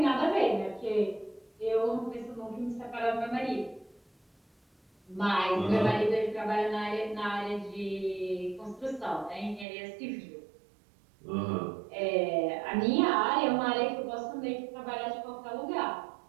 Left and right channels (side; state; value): left; drops out; at 9.7 s